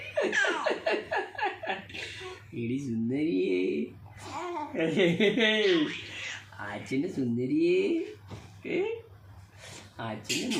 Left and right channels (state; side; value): identical; both; correlation 1.00